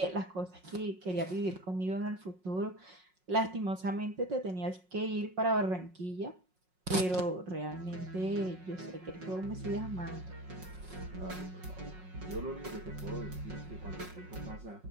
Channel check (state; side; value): late; left; 5.5 ms